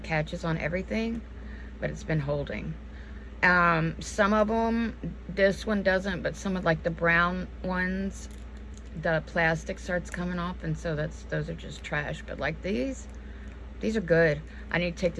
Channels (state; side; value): identical; both; correlation 1.00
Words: catches on everything, but it's been holding. Some of them, this one doesn't, but some of like the brown ones, the plastic starts coming off, and so those are just trash. But like these are good. I need to take